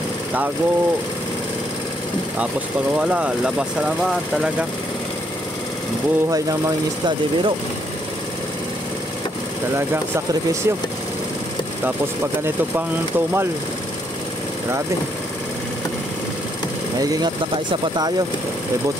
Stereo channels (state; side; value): normal; both; correlation 0.73